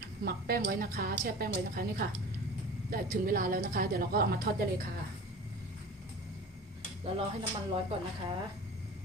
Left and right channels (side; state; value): both; normal; correlation 0.38